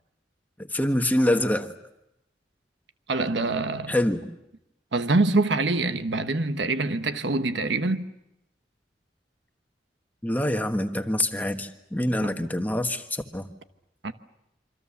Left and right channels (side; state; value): both; normal; correlation 0.63